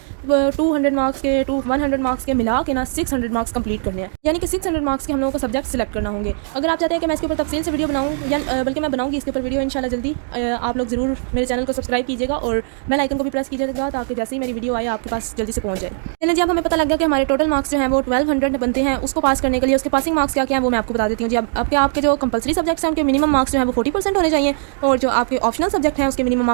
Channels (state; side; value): silent; left; digital silence